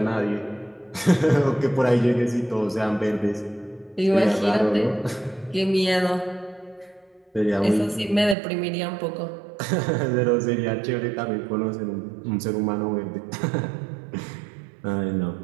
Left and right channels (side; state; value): left; drops out; at 8.3 s